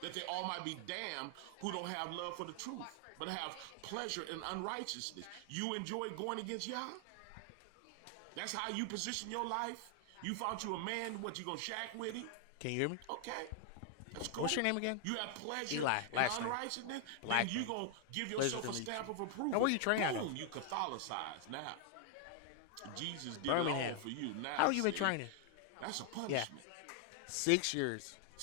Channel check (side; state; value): both; different; correlation 0.00